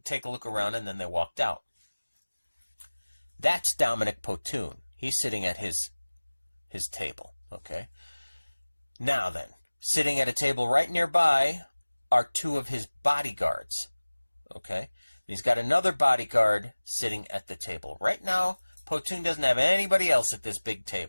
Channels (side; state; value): both; inverted; correlation -1.00